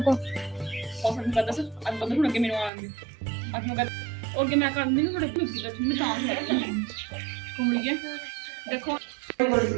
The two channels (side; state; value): left; drops out; at 2.7 s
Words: और मैं पता सर अब बंद होने के मेनू आएंगे अब मैं और के मैं कर दूंगी थोड़े कुछ की तो मैं काम है घूम लिए देखो